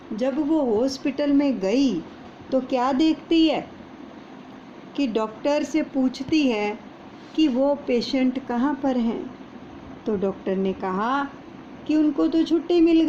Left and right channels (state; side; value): identical; both; correlation 1.00